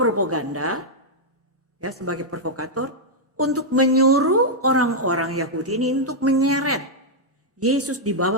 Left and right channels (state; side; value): normal; both; correlation -0.05